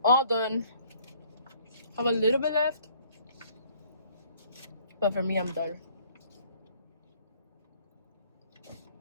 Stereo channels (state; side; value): inverted; both; correlation -0.59